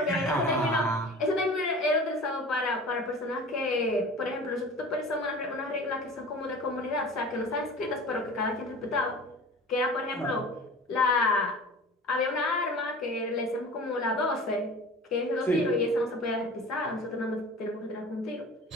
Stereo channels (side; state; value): both; normal; correlation 0.39